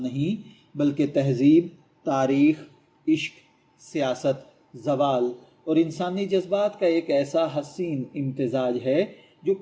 نہیں بلکہ تہذیب، تاریخ، عشق، سیاست، زوال اور انسانی جذبات کا ایک ایسا حسین امتزاج ہے جو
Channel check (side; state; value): both; identical; correlation 1.00